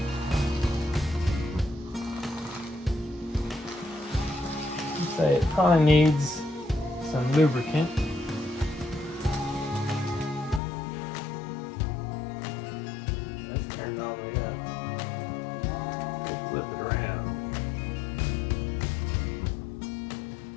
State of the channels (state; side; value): drops out; right; at 10.6 s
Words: I'd say it probably needs some lubricant. Let's turn it all the way up. We'll flip it around.